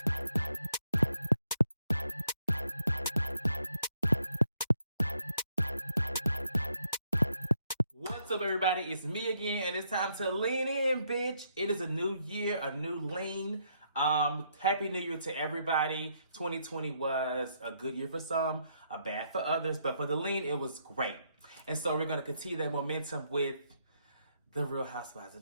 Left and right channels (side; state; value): both; inverted; correlation -0.74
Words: What's up, everybody? It's me again, and it's time to lean in, bitch. It is a new year, a new lean. Happy New Year to everybody. 2020 was a good year for some, a bad for others, but for the lean, it was great. And so we're gonna continue that momentum with the Real Housewives